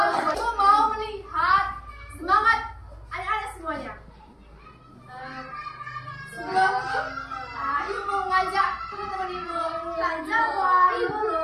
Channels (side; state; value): both; identical; correlation 1.00